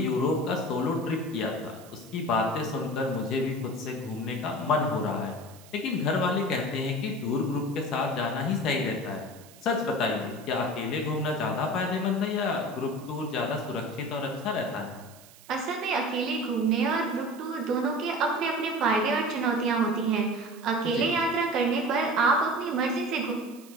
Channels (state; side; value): noise; right; hiss, 22 dB below the sound